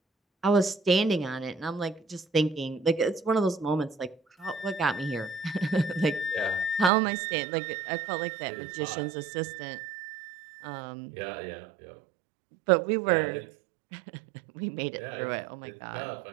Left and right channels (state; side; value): drops out; left; at 6.9 s